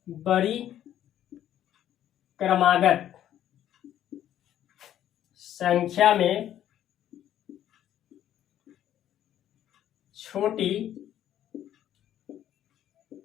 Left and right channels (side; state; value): right; quieter; 11.3 dB